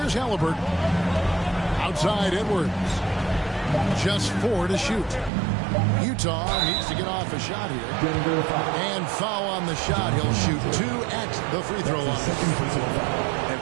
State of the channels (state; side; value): drops out; left; at 5.3 s